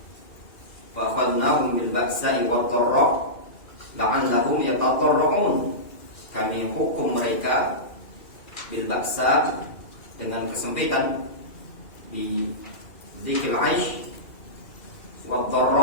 "Wa akhadnahum bil ba'sa'i wad dharra la'allahum yatadarrun." Kami hukum mereka bil ba'sa, dengan kesempitan di dzikil aish, wad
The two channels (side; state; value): right; late; 2.4 ms